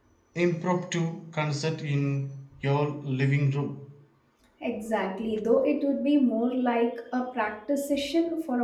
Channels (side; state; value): both; identical; correlation 1.00